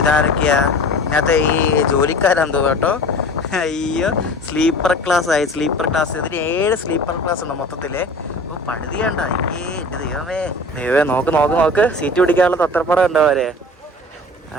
ഇതാരൊക്കെയാ ഇതിനകത്ത് ഈ ജോലിക്കാരാന്ന് തോന്നുന്നു കേട്ടോ അയ്യോ സ്ലീപ്പർ ക്ലാസ് ആയി സ്ലീപ്പർ ക്ലാസ് ഇതിന് 7 സ്ലീപ്പർ ക്ലാസ് ഉണ്ട് മൊത്തത്തില് ഓ പഴുതിയണ്ട എൻ്റെ ദൈവമേ നോക്ക് സീറ്റ് പിടിക്കാനുള്ള തത്രപ്പടം ഉണ്ടോ അവരെ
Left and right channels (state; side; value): normal; both; correlation 0.39